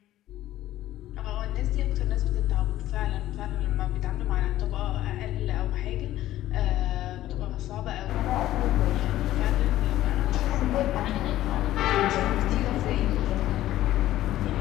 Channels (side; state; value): right; quieter; 14.2 dB